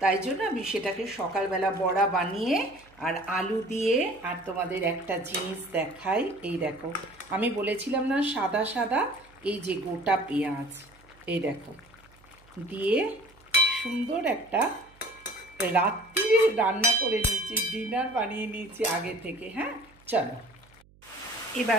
তাই জন্য আমি সেটাকে সকালবেলা বড়া বানিয়ে আর আলু দিয়ে, আর তোমাদের একটা জিনিস দেখাই, এই দেখো আমি বলেছিলাম না সাদা সাদা, এই যে গোটা পেঁয়াজ এই দেখো দিয়ে সুন্দর একটা রাত্রি রান্না করে নিয়েছি, ডিনার বানিয়ে নিয়েছি আগে থেকে। হ্যাঁ চলো,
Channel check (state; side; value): noise; right; hum, 28 dB below the sound